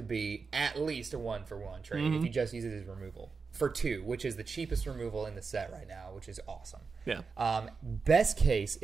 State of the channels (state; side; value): quieter; left; 4.9 dB